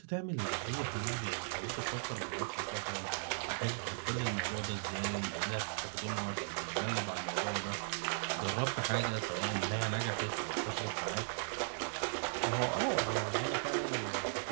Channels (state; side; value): silent; left; digital silence